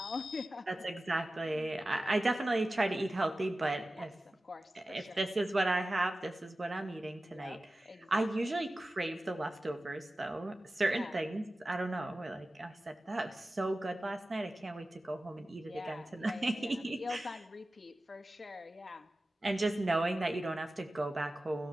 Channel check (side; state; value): both; normal; correlation 0.95